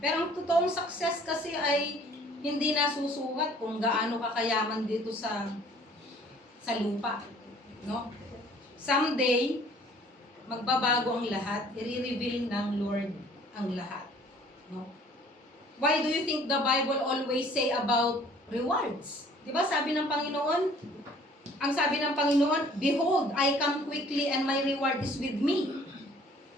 ang totoong success kasi ay hindi nasusukat kung gaano kakayaman dito sa lupa. No? Someday, magbabago ang lahat, i-reveal ng Lord ang lahat. No? Why do you think the Bible always say about rewards? Diba sabi ng Panginoon, ang sabi ng Panginoon, behold, I come quickly and my reward is with me.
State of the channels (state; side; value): normal; both; correlation 0.55